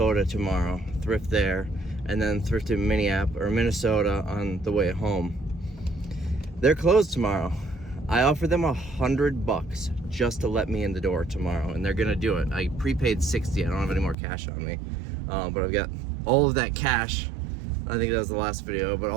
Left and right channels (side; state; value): left; drops out; at 14.2 s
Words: tomorrow, thrift there, and then thrift in Minnesota on the way home. They're closed tomorrow. I offered them $100 just to let me in the door tomorrow, and they're gonna do it. I prepaid 60. I don't have any more cash on me, but I've got all of that cash. I think that was the last video, but